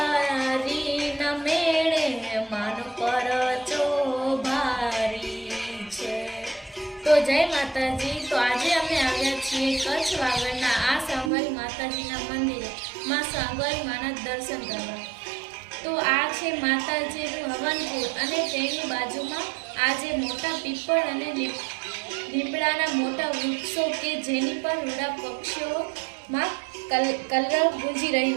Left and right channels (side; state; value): left; drops out; at 11.3 s